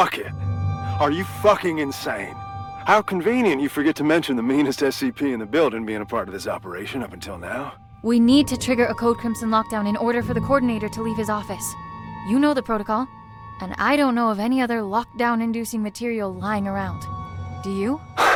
Are you fucking insane? How convenient you forget to mention the meanest SCP in the building being a part of this operation up until now. We need to trigger a Code Crimson lockdown in order for the coordinator to leave his office. You know the protocol, and I don't know of any other lockdown-inducing material lying around. Do you?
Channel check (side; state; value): both; identical; correlation 1.00